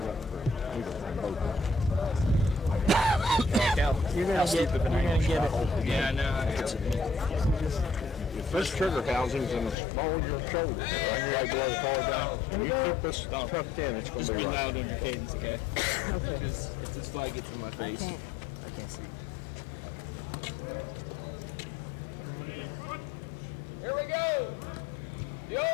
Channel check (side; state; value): right; drops out; at 9.8 s